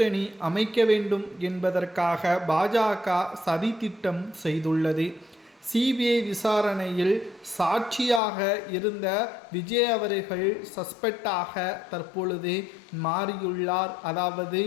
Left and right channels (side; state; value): right; drops out; at 8.2 s